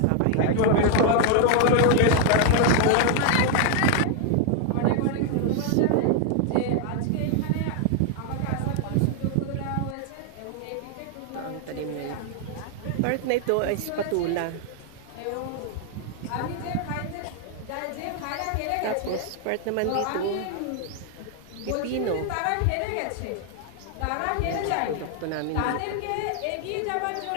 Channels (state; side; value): different; both; correlation 0.01